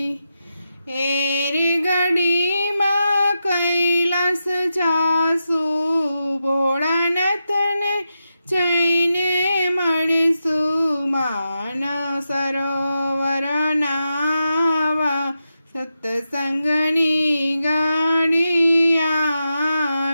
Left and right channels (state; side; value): inverted; both; correlation -0.88